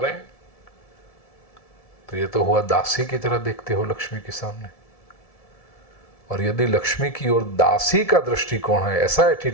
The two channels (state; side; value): late; right; 1.7 ms